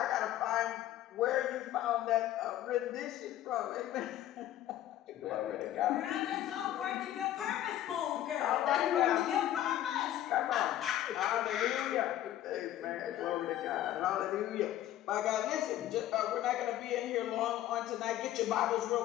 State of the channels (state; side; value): quieter; right; 12.8 dB